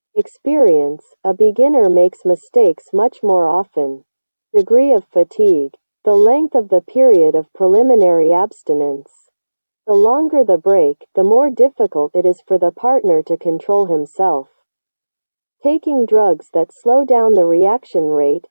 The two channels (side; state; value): both; inverted; correlation -1.00